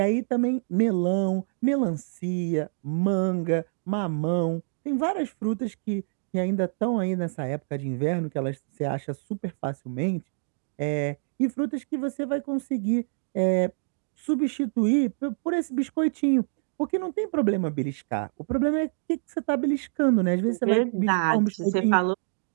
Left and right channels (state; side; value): silent; left; digital silence